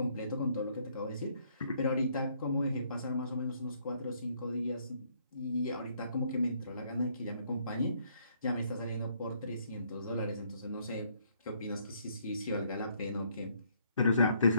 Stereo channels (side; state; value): both; inverted; correlation -0.68